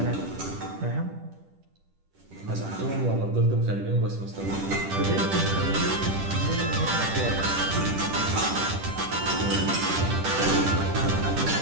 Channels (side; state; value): left; late; 10 ms